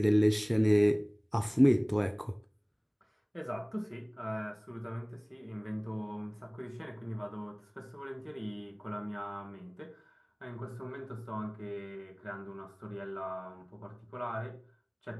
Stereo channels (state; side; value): identical; both; correlation 1.00